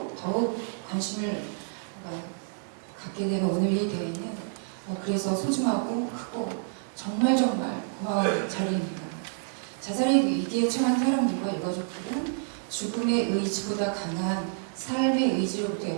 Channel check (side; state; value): left; silent; 59 dB below the other